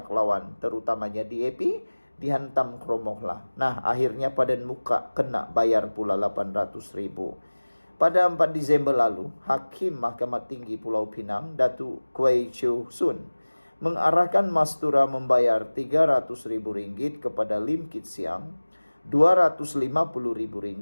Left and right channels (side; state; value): both; inverted; correlation -1.00